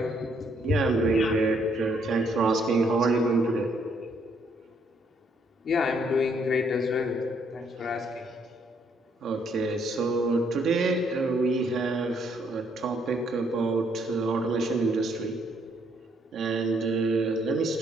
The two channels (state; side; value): normal; both; correlation 0.70